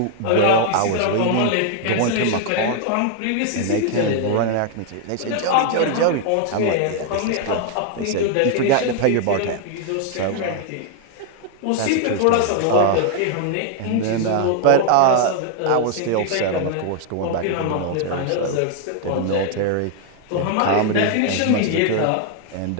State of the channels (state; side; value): different; both; correlation 0.00